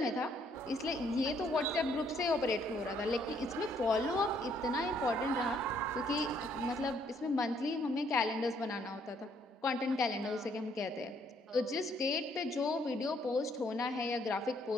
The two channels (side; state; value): both; normal; correlation 0.67